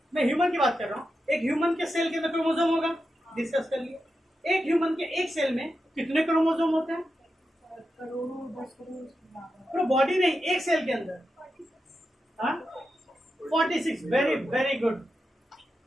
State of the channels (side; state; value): both; normal; correlation 0.88